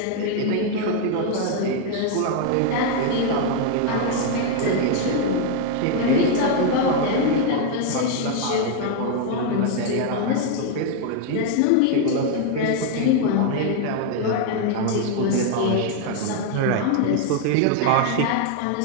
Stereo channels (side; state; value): both; different; correlation 0.00